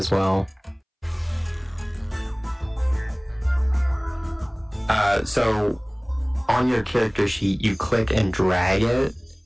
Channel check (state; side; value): identical; both; correlation 1.00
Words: well. So, on your character sheet, you click and drag it,